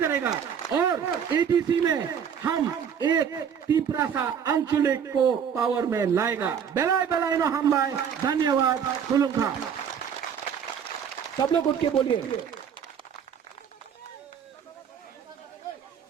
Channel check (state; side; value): quieter; left; 7.8 dB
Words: करेगा। और एटीसी में हम एक तिपरासा आंचलिक को पावर में लाएगा। बेलाय बेलाय नो हम लाए। धन्यवाद। खुलुमखा। सब लोग उठ के बोलिए।